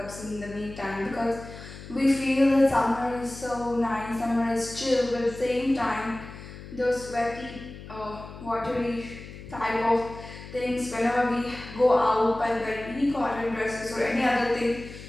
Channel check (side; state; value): left; noise; hum, 14 dB below the sound